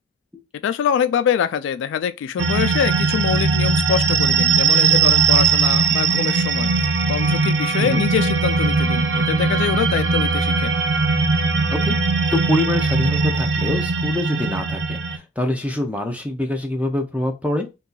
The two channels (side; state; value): both; normal; correlation 0.38